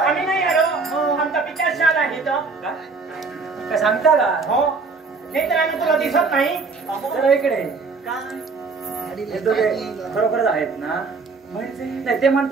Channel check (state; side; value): quieter; left; 4.3 dB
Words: नाही आलो आमचा पिता शाल आहे तर काय सांगता का हो नाही तर आम्ही तुला दिसत नाही. जरा इकडे काय हे दोघे खरोखरच आहेत ना. म्हणजे नाही ते